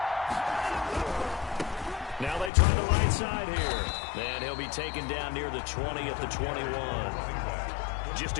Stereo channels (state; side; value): drops out; right; at 2.5 s